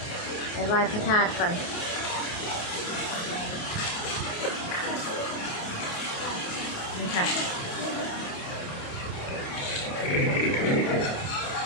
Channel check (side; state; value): right; late; 28 ms